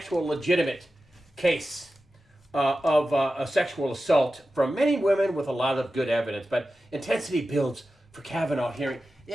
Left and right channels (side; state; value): both; normal; correlation 0.93